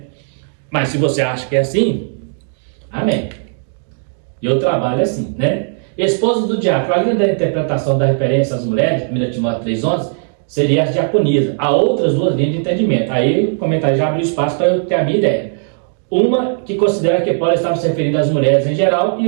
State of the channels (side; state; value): left; silent; 63 dB below the other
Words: Mas se você acha que é assim, amém. Eu trabalho assim, né? Esposa do diácono, além da interpretação da referência às mulheres, 1 Timóteo 3,11, seria as diaconias. Há outras duas linhas de entendimento. Aí o comentário já abriu espaço para eu ter a minha ideia. Uma que considera que Paulo estava se referindo às mulheres em geral,